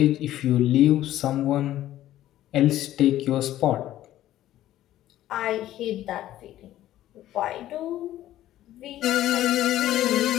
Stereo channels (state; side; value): quieter; right; 13.5 dB